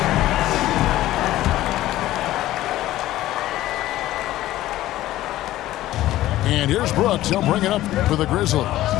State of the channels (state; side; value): quieter; right; 15.0 dB